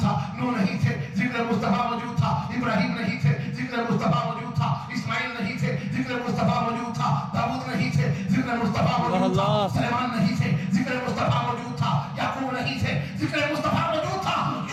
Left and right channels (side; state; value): both; identical; correlation 1.00